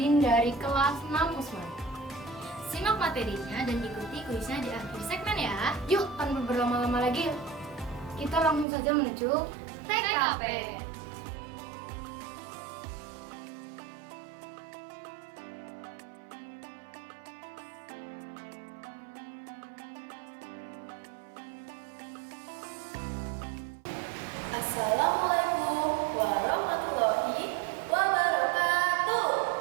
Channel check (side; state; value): left; drops out; at 8.7 s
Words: dari kelas 6 Usman. Simak materinya dan ikuti kuisnya di akhir segmen ya. Yuk, tanpa berlama-lama lagi, kita langsung saja menuju TKP. Assalamualaikum warahmatullahi wabarakatuh.